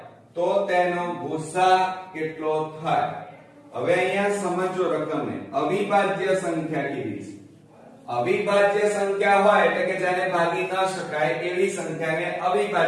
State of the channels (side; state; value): both; identical; correlation 1.00